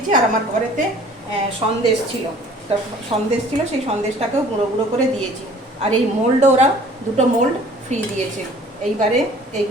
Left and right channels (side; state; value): both; normal; correlation 0.51